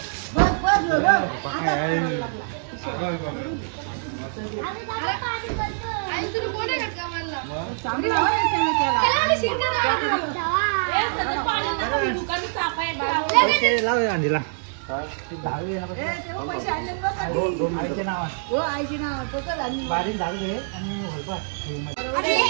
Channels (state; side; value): silent; left; digital silence